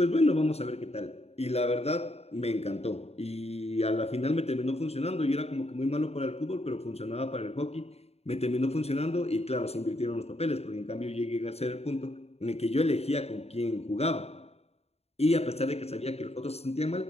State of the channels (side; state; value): right; late; 0.30 ms